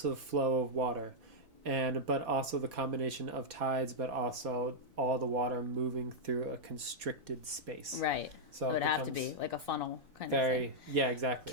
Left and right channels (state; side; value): late; left; 4.2 ms